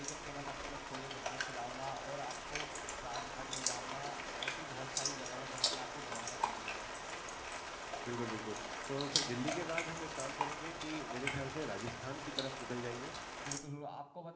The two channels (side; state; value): both; identical; correlation 1.00